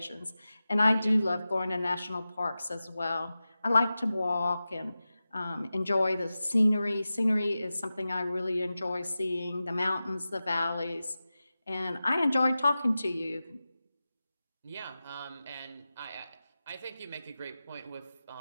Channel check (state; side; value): inverted; both; correlation -0.94